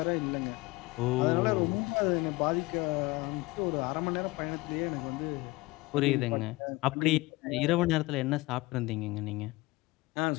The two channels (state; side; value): quieter; right; 21.9 dB